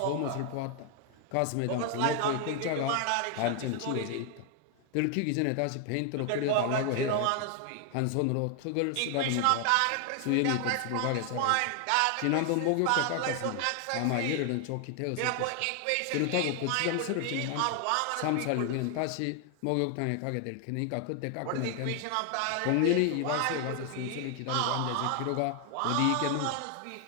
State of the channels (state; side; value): different; both; correlation 0.00